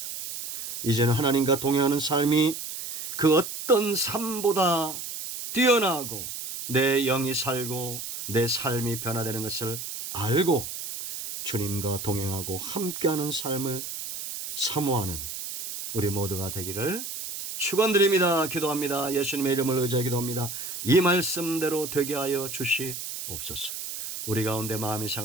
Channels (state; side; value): noise; right; hiss, 7 dB below the sound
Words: 이제는 하나님과 동행하는 삶이 그 어떤 삶보다 뛰어나고 내 영이 살고 내 삶이 변화되는 것을 알고 주님과 동행하고 함께하는 삶을 사모하는 우리 모두가 되기를 축원드립니다. 기도합니다. 예수님의 이름을 의지하여 기도합니다. 이 말씀대로 되게 하여 주시옵소서. 우리 가운데 마음이